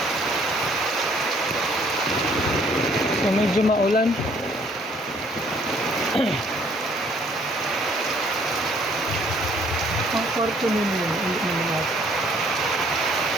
So medyo maulan. Ang kwarto ninyo,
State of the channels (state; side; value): normal; both; correlation 0.62